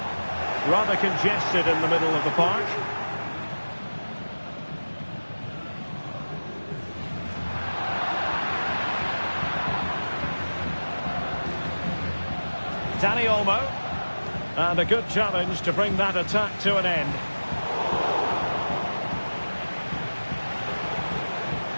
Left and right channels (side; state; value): both; inverted; correlation -1.00